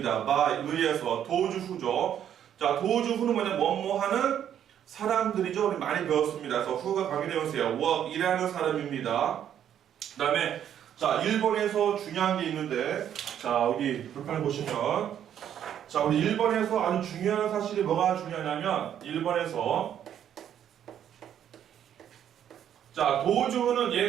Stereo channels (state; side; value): quieter; left; 9.9 dB